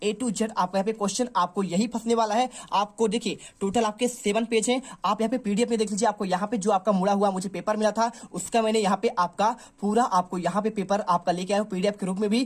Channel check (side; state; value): both; identical; correlation 1.00